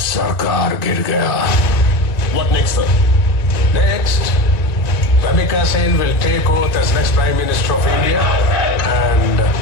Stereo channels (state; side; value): late; right; 1.9 ms